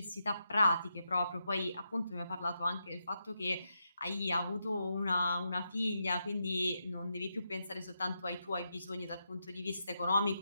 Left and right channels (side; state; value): both; inverted; correlation -0.84